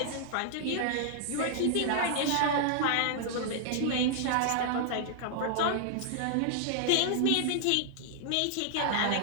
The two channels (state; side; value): different; both; correlation -0.01